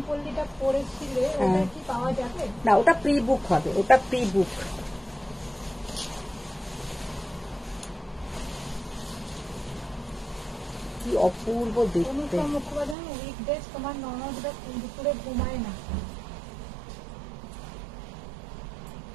পল্লীটা পরেছিলে ওটা কি পাওয়া যাবে? না, ওটা প্রি বুক হবে, ওটা প্রি বুক। কি অপূর্ব দেখতে। অনুষ্কা মুখোপাধ্যায় উইকডেজ তোমার ননদরা দুপুরে ঘুমায় না।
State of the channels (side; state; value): left; drops out; at 13.0 s